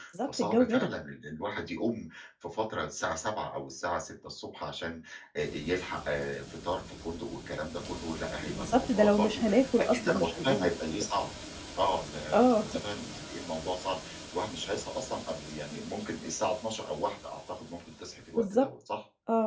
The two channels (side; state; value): both; identical; correlation 1.00